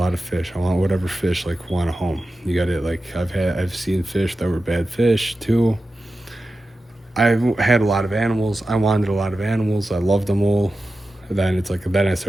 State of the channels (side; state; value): both; normal; correlation 0.93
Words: of fish. I want whatever fish like want a home. You got it. Like I've seen fish that were bad fish too. I've had a lot of animals. I wanted a lot of animals. I loved them all. And then it's like, then I